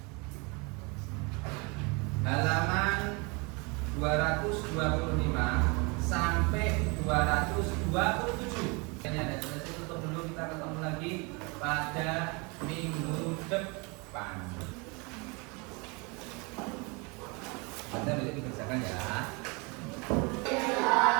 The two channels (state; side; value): quieter; left; 29.6 dB